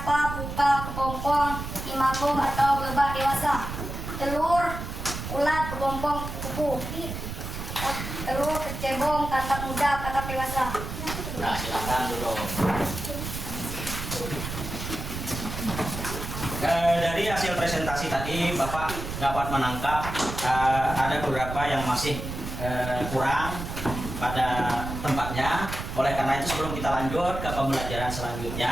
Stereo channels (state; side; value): noise; right; rumble, 7 dB below the sound